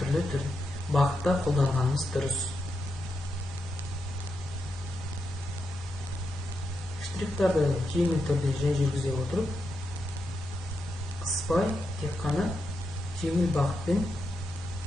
бағытта қолданғанымыз дұрыс. Штрихтарды жеңіл түрде жай жүргізе отырып, қыспай, тек қана жеңіл бағытпен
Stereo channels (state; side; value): normal; both; correlation 0.85